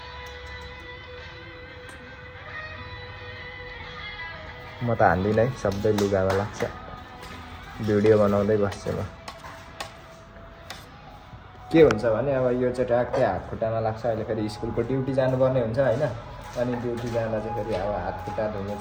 म त हान्दिनँ है, सबै लुगामा लाग्छ। भिडियो बनाउँदै बस्छु म। के हुन्छ भने अब यो चाहिँ ट्याक्कै हात खुट्टामा लाग्छ। अहिले फेरि स्कुलको ड्युटी जानुपर्ने हुन्छ होइन। अनि ड्युटी जाँदा चाहिँ फेरि अब हात खुट्टा धुनु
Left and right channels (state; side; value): identical; both; correlation 1.00